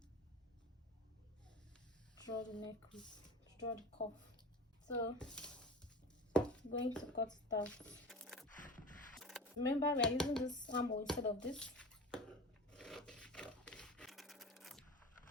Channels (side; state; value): both; normal; correlation 0.35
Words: draw the neck width, draw the cuff. So I'm going to cut it out. Remember, we are using this armhole instead of this.